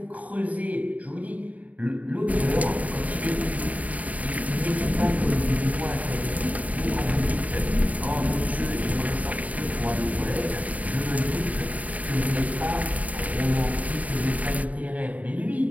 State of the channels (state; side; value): late; left; 0.071 ms